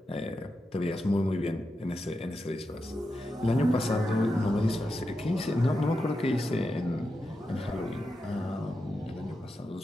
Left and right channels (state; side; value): normal; both; correlation 0.88